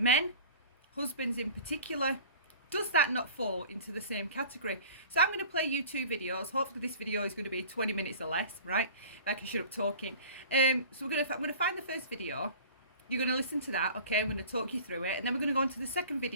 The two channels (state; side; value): inverted; both; correlation -0.42